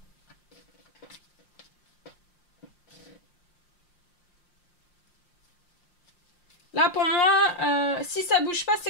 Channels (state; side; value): late; right; 5.7 ms